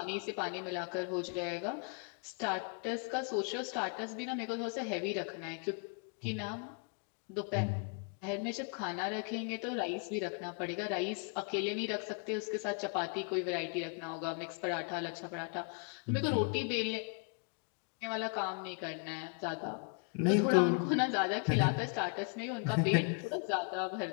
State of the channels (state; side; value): quieter; right; 37.1 dB